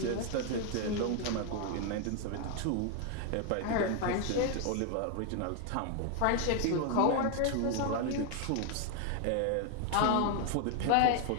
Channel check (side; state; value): both; different; correlation 0.00